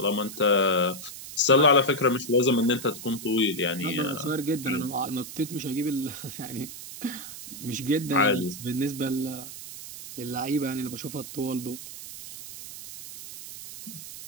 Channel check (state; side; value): noise; right; hiss, 12 dB below the sound